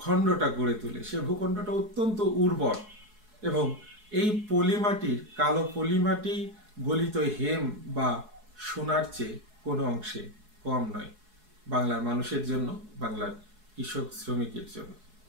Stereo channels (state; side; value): late; left; 4.7 ms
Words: গড়ে তোলে, সে ভূখণ্ডটা অত্যন্ত উর্বর এবং এই পলিমাটির, কালো পলিমাটি গলিত হেম বা সোনার চেয়ে কোনো অংশে কম নয় বাংলার মানুষের জন্য, বাংলার কৃষক শ্রমিকের জন্য।